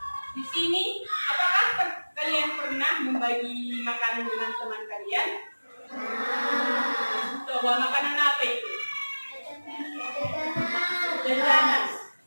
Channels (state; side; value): inverted; both; correlation -1.00